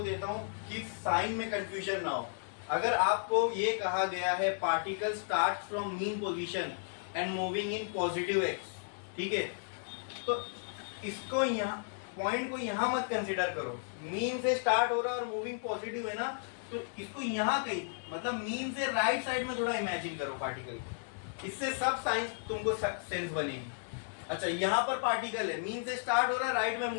देता हूं कि साइन में कंफ्यूजन ना हो। अगर आपको ये कहा गया है particle start from mean position and moving in positive x, ठीक है, तो इसको यहाँ पॉइंट को यहाँ मत कंसिडर करो। मीन से स्टार्ट हो रहा है और मूविंग पॉजिटिव है ना, तो इसको यहाँ कहीं मतलब मीन से राइट साइड में थोड़ा इमेजिन करो पार्टिकल, इससे सब साइंस तुमको सेंस बनेगी। अच्छा, यहाँ पर पार्टिकल है, मीन से स्टार्ट हो रहा है, राइट में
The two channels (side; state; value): right; silent; digital silence